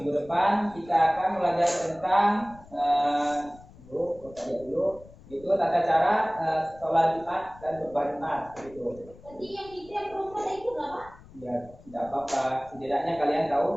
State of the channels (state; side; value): noise; left; rumble, 22 dB below the sound